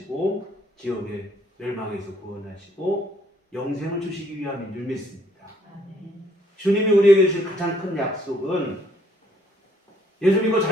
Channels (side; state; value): both; normal; correlation 0.66